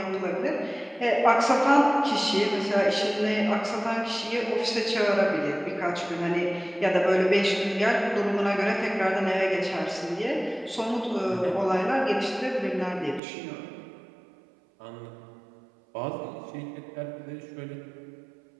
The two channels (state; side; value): drops out; left; at 13.2 s